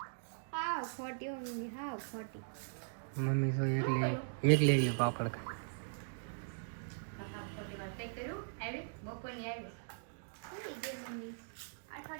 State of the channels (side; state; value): left; silent; digital silence